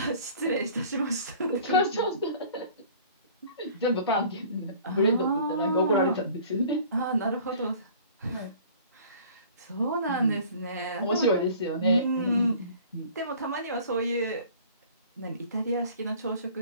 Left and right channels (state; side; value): inverted; both; correlation -0.48